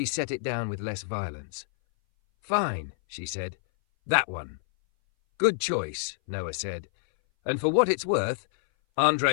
set it down with less violence. Fine, she said. That one. Good choice, Noah said. And for what it's worth,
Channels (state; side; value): silent; right; 58 dB below the other